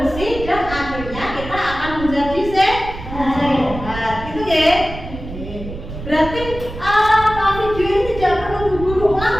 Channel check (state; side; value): noise; right; rumble, 10 dB below the sound